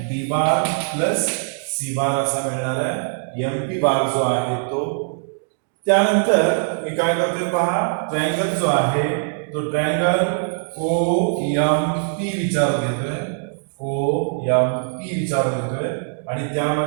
B बार प्लस C बार असा मिळणार आहे. MP बार जो आहे तो. त्यानंतर मी काय करतोय पहा. ट्रायंगल जो आहे तो ट्रायंगल OMP विचार घेतोय, आणि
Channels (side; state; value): left; silent; digital silence